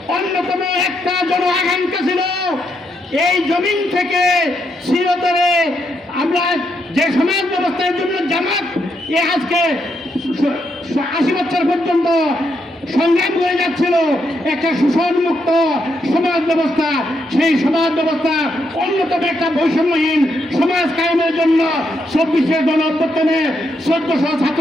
অন্যতম একটা জন আকাঙ্ক্ষা ছিল এই জমিন থেকে চিরতরে আমরা যে সমাজ ব্যবস্থার জন্য জামাত আজকে 80 বছর পর্যন্ত সংগ্রাম করে যাচ্ছিল, একটা শোষণমুক্ত সমাজ ব্যবস্থা, সেই সমাজ ব্যবস্থা অন্যতম একটা বৈষম্যহীন সমাজ কায়েমের জন্য 24শে গণ অভ্যুত্থানে 1400 ছাত্র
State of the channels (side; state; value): both; normal; correlation 0.79